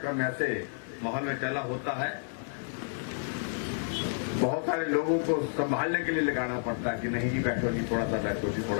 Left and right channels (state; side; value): silent; right; digital silence